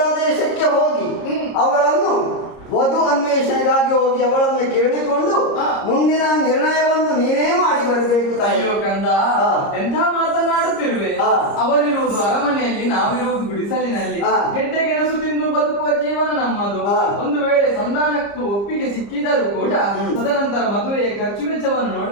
ಹೋಗಿ ಅವಳನ್ನು ವಧು ಅನ್ವೇಷಣೆಗಾಗಿ ಹೋಗಿ ಅವಳನ್ನು ಕೇಳಿಕೊಂಡು ಮುಂದಿನ ನಿರ್ಣಯವನ್ನು ನೀನೇ ಮಾಡಿ ಬರಬೇಕು. ಅಯ್ಯೋ ಕಂದ, ಎಂಥ ಮಾತನಾಡುತ್ತಿರುವೆ. ಅವರಿರುವುದು ಅರಮನೆಯಲ್ಲಿ, ನಾವಿರುವುದು ಗುಡಿಸಲಿನಲ್ಲಿ. ಗೆಡ್ಡೆ ಗೆಣಸು ತಿಂದು ಬದುಕುವ ಜೀವನ ನಮ್ಮದು. ಒಂದು ವೇಳೆ ಸಂಧಾನಕ್ಕೂ ಒಪ್ಪಿಗೆ ಸಿಕ್ಕಿದರೂ ಕೂಡ ತದನಂತರ ಮದುವೆಯ ಖರ್ಚು ವೆಚ್ಚವನ್ನು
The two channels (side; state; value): right; late; 30 ms